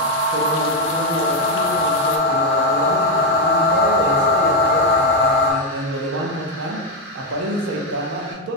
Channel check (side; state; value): both; normal; correlation 0.04